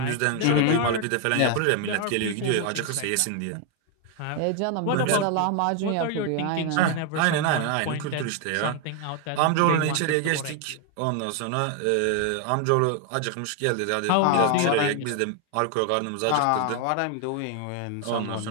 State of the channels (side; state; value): both; different; correlation 0.01